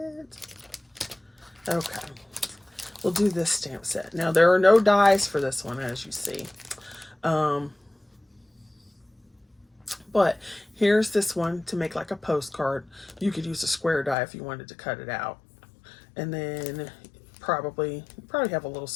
Okay, we'll do this stamp set. Now, there are no dies for this one, as you see. But here's this one to make like a postcard. You could use a square die if you wanted to cut it out. And then probably have a little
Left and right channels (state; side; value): drops out; right; at 14.2 s